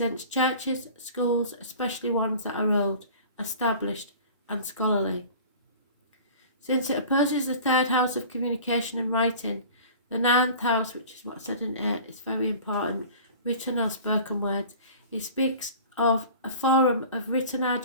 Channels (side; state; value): both; inverted; correlation -0.42